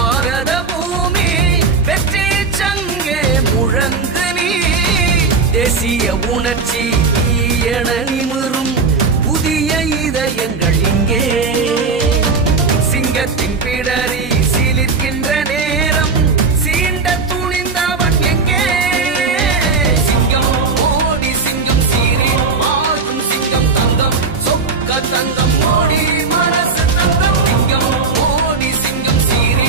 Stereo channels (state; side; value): quieter; left; 4.5 dB